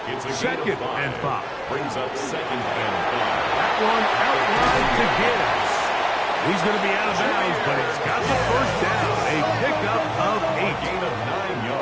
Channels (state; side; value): identical; both; correlation 1.00